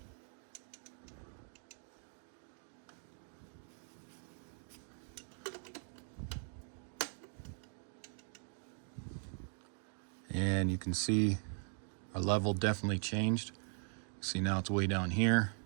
And you can see our level definitely changed. See, now it's way down here.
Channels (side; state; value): left; silent; 51 dB below the other